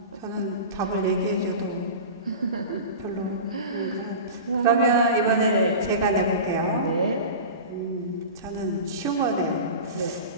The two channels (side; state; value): both; inverted; correlation -0.31